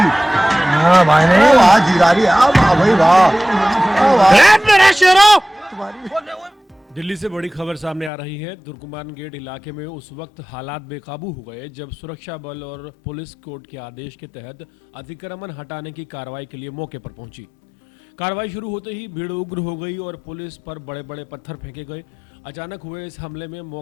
हाँ भाई नहीं वाह जीरा रही है, वाह भाई वाह, दिल्ली से बड़ी खबर सामने आ रही है। तुर्कमान गेट इलाके में उस वक्त हालात बेकाबू हो गए जब सुरक्षा बल और पुलिस कोर्ट के आदेश के तहत अतिक्रमण हटाने की कार्रवाई के लिए मौके पर पहुंची। कार्रवाई शुरू होते ही भीड़ उग्र हो गई और पुलिस पर बड़े बड़े पत्थर फेंके गए। अचानक हुए इस हमले में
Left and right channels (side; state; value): right; drops out; at 8.1 s